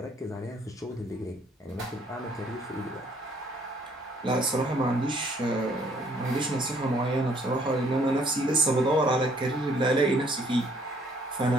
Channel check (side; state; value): both; normal; correlation 0.63